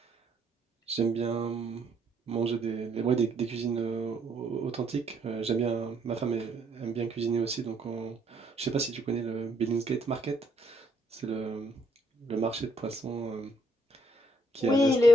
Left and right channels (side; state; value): both; normal; correlation 0.70